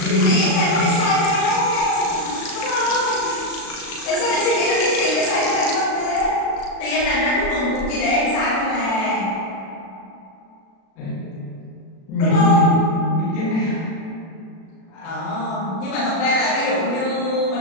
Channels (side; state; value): right; late; 36 ms